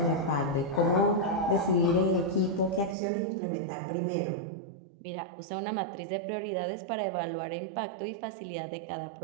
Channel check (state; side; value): drops out; left; at 3.0 s